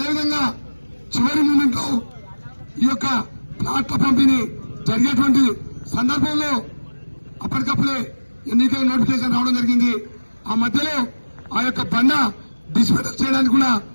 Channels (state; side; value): inverted; both; correlation -1.00